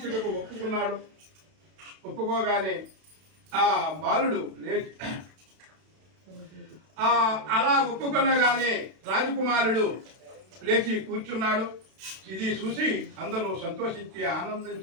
ఒప్పుకున్నాడు. ఒప్పుకోగానే ఆ బాలుడు లేచి అలా ఒప్పుకునగానే రాజకుమారుడు లేచి కూర్చున్నాడు. ఇది చూసి అందరూ సంతోషించి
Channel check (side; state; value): left; late; 32 ms